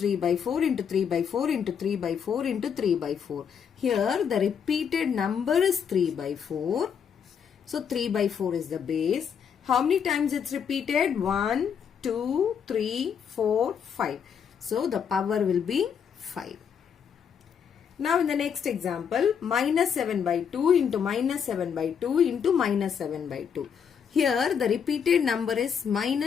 by 4 into 3 by 4 into 3 by 4 into 3 by 4. Here the repeated number is 3 by 4. So 3 by 4 is the base. How many times it's repeated? 1, 2, 3, 4, 5. So the power will be 5. Now in the next example, minus 7 by 2 into minus 7 by 2 into minus 7 by 2. Here the repeated number is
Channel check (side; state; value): right; quieter; 7.4 dB